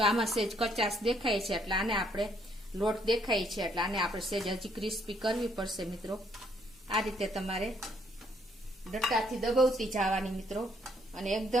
આમાં સેજ કચાશ દેખાય છે એટલે આને આપણે લોટ દેખાય છે એટલે આને આપણે સેજ હજી ક્રિસ્પી કરવી પડશે મિત્રો. આ રીતે તમારે ડટ્ટાથી દબાવતી જવાની મિત્રો અને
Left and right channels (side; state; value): both; normal; correlation 0.69